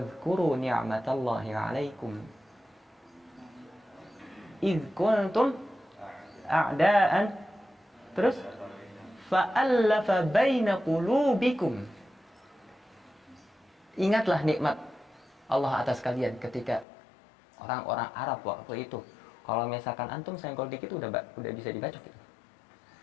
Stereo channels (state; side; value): drops out; right; at 16.9 s